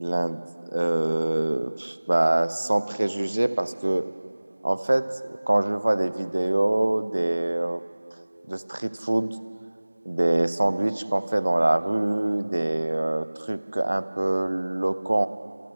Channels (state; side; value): inverted; both; correlation -1.00